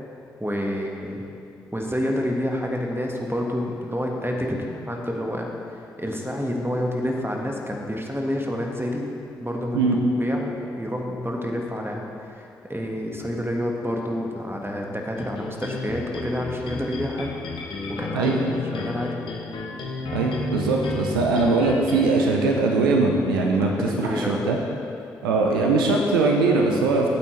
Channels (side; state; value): both; normal; correlation 0.59